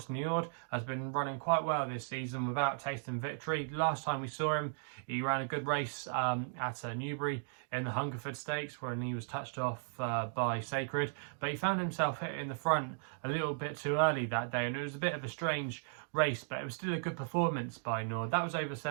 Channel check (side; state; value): left; silent; digital silence